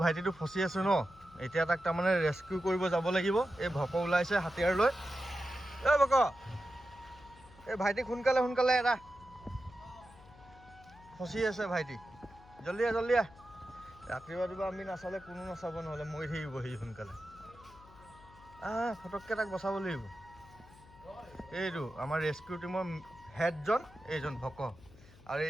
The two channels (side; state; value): left; noise; hum, 22 dB below the sound